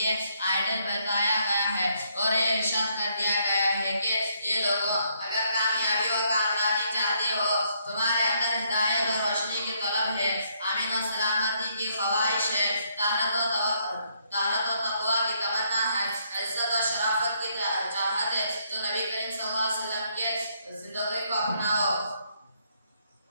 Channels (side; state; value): both; inverted; correlation -0.72